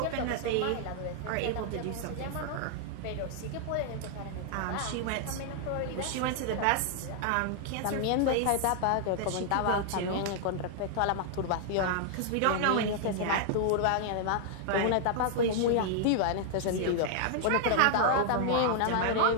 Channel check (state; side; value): different; both; correlation 0.00